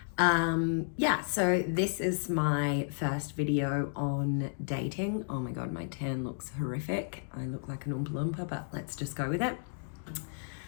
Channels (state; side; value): silent; right; digital silence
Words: So this is my first video on dating. Oh my God, my tan looks horrific. I look like an Oompa Loompa, but let's just go with it.